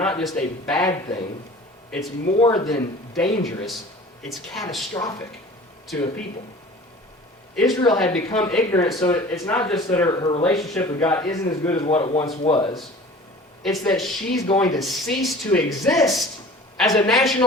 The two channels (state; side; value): normal; both; correlation 0.43